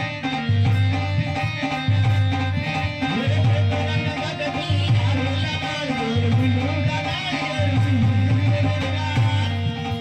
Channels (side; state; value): both; identical; correlation 1.00